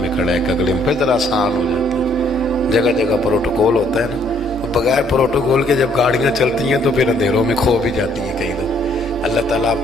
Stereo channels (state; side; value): normal; both; correlation 0.65